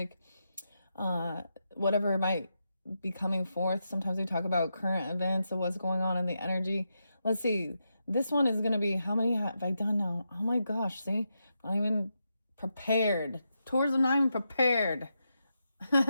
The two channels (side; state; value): both; inverted; correlation -0.85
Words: uh, whatever might be coming forth. Sometimes we talk about current events of what's going on in the energy. Let's see. This one is going to be how many have I done now? Oh my gosh, see? I'm not even prepared. Taurus, I'm not even prepared.